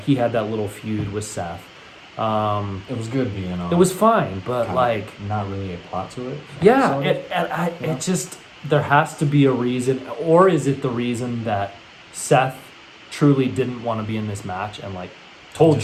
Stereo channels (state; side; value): identical; both; correlation 1.00